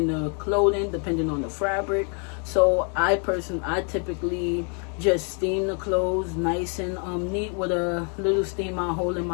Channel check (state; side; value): quieter; right; 39.2 dB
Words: the clothing depending on the fabric. So I typically just steam the clothes nice and neat with a little steamer hold in